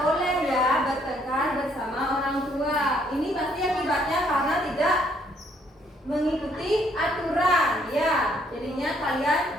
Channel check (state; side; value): normal; both; correlation 0.67